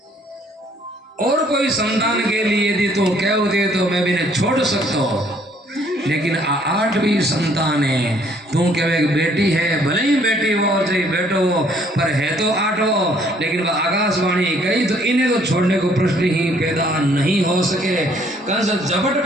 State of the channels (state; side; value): normal; both; correlation 0.63